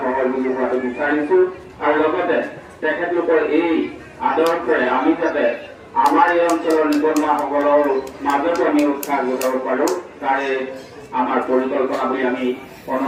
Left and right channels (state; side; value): identical; both; correlation 1.00